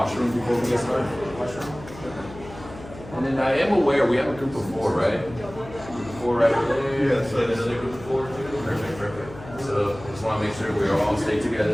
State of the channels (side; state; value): left; noise; hum, 16 dB below the sound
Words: before we get started? Washroom? And then I am aware we have a group of 4, right? Group of 4 right there. Yes. And another group of 4 too. Perfect, perfect. So I just want to make sure we all stay